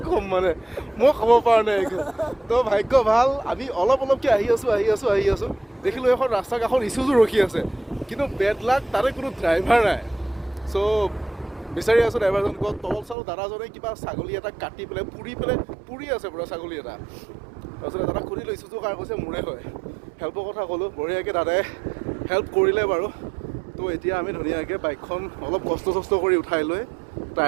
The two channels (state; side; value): drops out; left; at 13.2 s